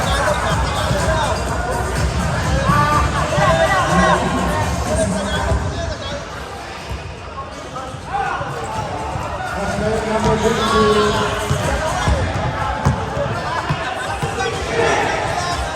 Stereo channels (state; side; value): identical; both; correlation 1.00